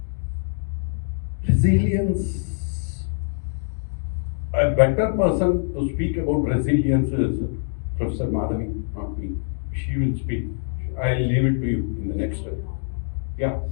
Resilience. A better person to speak about resilience is Professor Madhavi, not me. She will speak. I'll leave it to you in the next step. Yeah.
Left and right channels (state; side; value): silent; right; digital silence